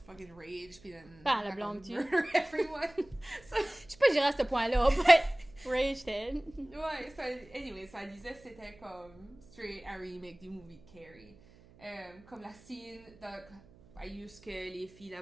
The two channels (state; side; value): noise; right; hum, 25 dB below the sound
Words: rage puis then la blâme-tu? Everyone. Je sais pas j'irais à ce point-là, but rage dead. Ouais, so anyway, ça disait que c'était comme straight un remake du movie Carrie. Comme la scène de juste que les filles la